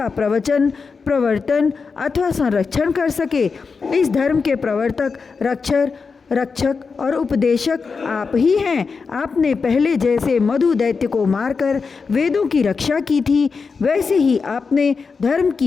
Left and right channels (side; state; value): right; quieter; 5.0 dB